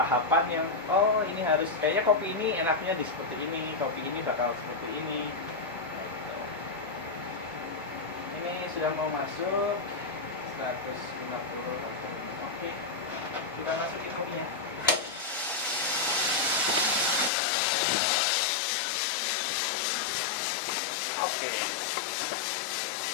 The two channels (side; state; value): right; drops out; at 17.3 s